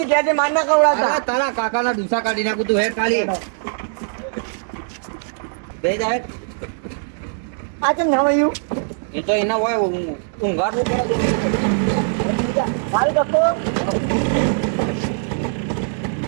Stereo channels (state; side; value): silent; left; digital silence